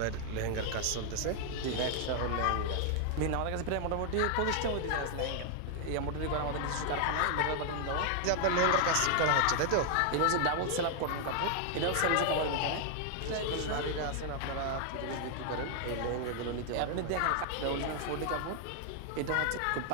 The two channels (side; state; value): both; different; correlation 0.00